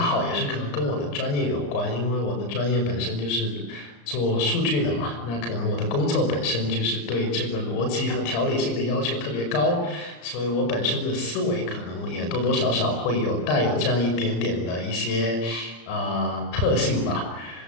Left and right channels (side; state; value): right; late; 34 ms